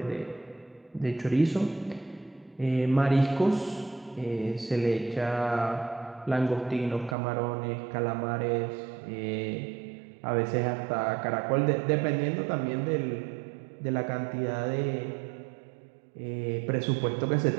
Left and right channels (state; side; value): drops out; left; at 7.2 s